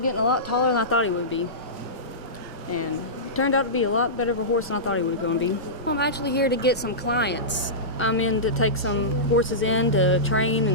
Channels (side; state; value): both; normal; correlation -0.18